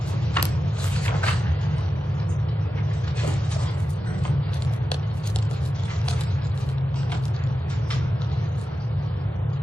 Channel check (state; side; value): normal; both; correlation 0.92